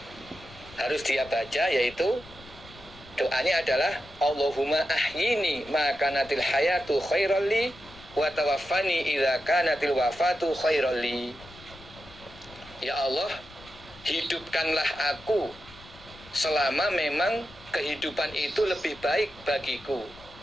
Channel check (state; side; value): noise; left; rumble, 21 dB below the sound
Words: harus dia baca, yaitu doanya adalah Allahumma ahyini ma kanatil hayatu khairal li wa tawaffani idza kanatil wafatu khairal li. Ya Allah, hidupkanlah aku selama memang kehidupan itu lebih baik bagiku